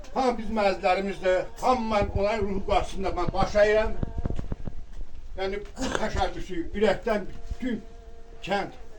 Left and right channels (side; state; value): both; identical; correlation 1.00